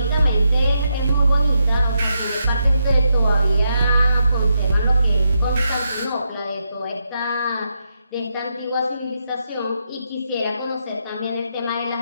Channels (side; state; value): both; inverted; correlation -0.82